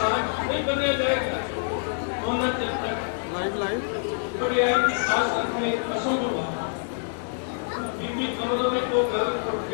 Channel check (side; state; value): right; silent; digital silence